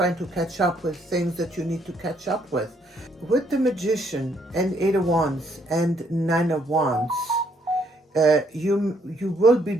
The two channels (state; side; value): normal; both; correlation 0.69